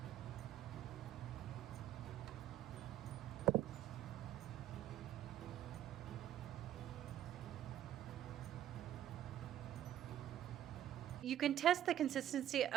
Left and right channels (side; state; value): left; quieter; 11.6 dB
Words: You can test the consistency